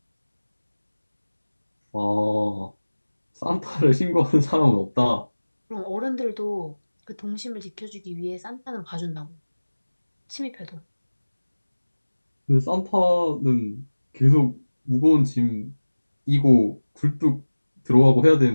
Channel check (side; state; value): both; inverted; correlation -1.00